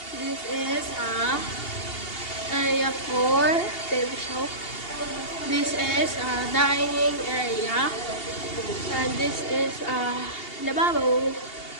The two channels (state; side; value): late; right; 2.8 ms